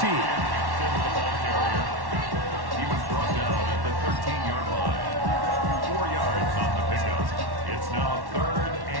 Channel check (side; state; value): left; late; 1.1 ms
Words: He was brought down at the 13-yard line. 4 yards on the pickup. It's now third